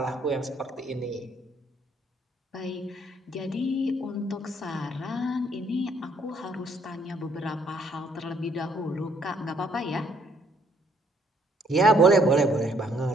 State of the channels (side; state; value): both; normal; correlation 0.67